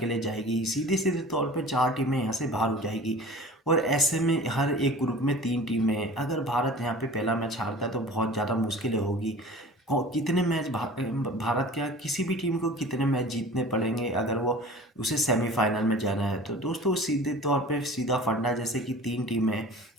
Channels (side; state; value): both; normal; correlation 0.41